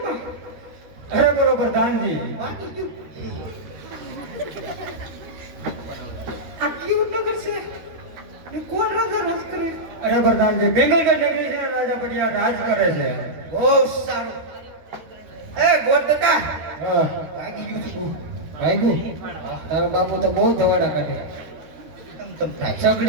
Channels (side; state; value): left; late; 12 ms